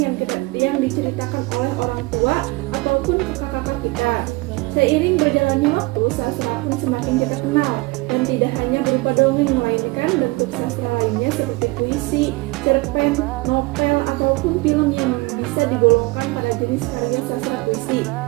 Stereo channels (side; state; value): left; quieter; 23.7 dB